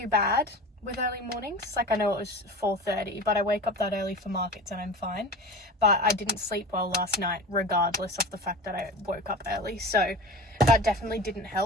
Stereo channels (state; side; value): normal; both; correlation 0.33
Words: bad with early mornings. Like, I know it was 4:30, but I wake up that early for markets and I'm fine. But I didn't sleep well last night, regardless of the fact that I woke up early. So that definitely didn't